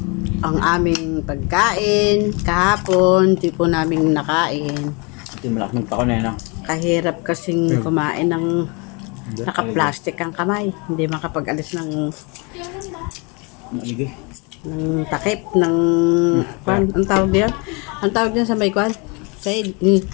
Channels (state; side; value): quieter; right; 30.6 dB